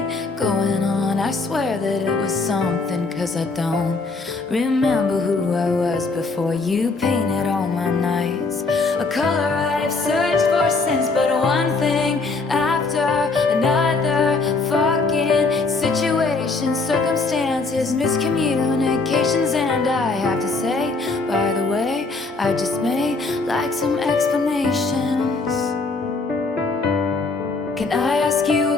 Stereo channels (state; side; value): quieter; right; 3.9 dB